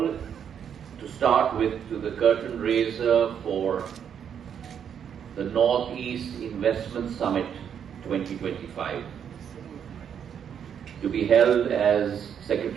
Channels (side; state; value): left; quieter; 8.2 dB